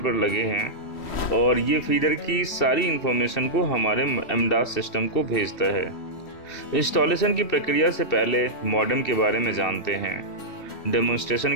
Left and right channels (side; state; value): right; late; 2.7 ms